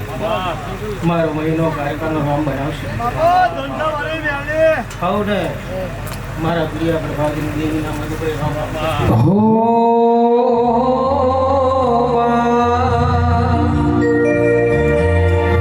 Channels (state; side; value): identical; both; correlation 1.00